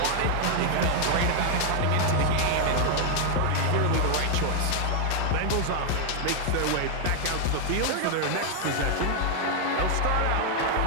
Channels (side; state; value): both; different; correlation 0.00